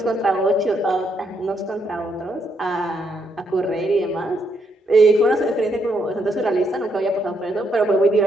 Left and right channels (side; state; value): both; normal; correlation 0.76